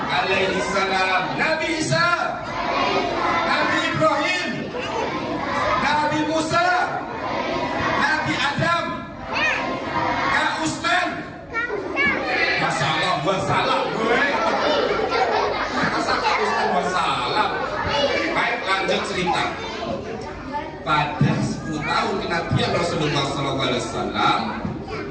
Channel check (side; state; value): both; identical; correlation 1.00